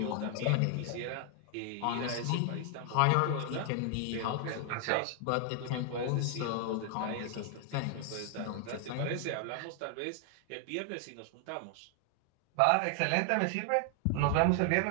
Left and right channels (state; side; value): different; both; correlation 0.00